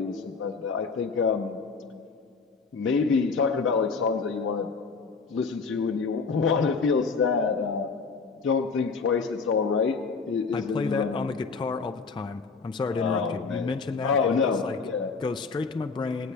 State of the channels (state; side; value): quieter; right; 4.8 dB